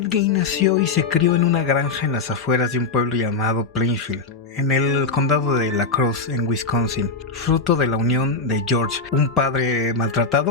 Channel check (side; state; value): right; quieter; 4.1 dB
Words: Gein nació y se crió en una granja en las afueras de un pueblo llamado Plainfield, en el condado de La Crosse, en Wisconsin, fruto de la unión de George, un padre